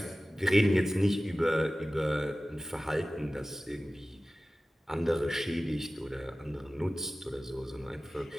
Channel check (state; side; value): normal; both; correlation 0.96